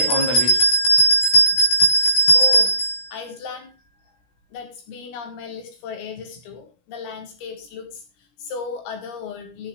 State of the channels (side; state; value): right; late; 17 ms